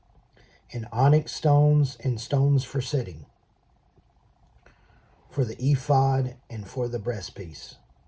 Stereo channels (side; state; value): both; identical; correlation 1.00